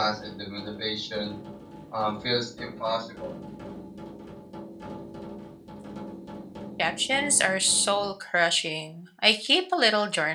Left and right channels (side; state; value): both; identical; correlation 1.00